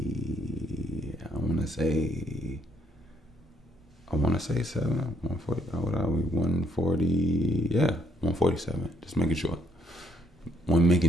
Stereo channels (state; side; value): normal; both; correlation 0.70